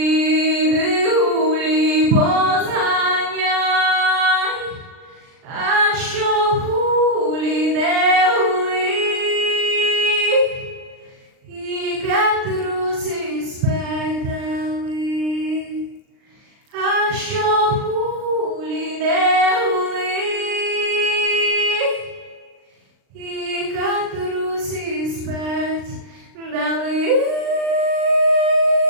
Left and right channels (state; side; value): late; left; 39 ms